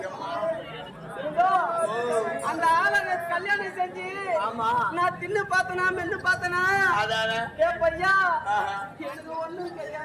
அந்த ஆளை கல்யாணம் செஞ்சு நான் தின்னு பார்த்தனா மென்னு பார்த்தனா ஏ பையா எனக்கு ஒண்ணும்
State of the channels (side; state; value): both; identical; correlation 1.00